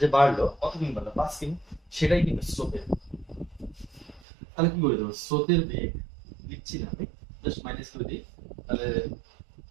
যে বাড়লো, কত কিমি বাড়লো, 5 কিমি, সেটাই কিন্তু স্রোতের। তাহলে কি করে দেবো, স্রোতের বেগ লিখছি না আমি, জাস্ট মাইনাস করে দিই। তাহলে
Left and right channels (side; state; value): left; drops out; at 4.2 s